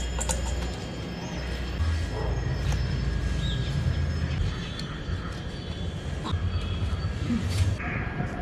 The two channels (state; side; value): identical; both; correlation 1.00